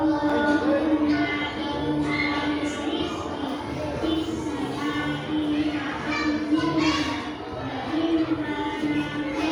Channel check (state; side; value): identical; both; correlation 1.00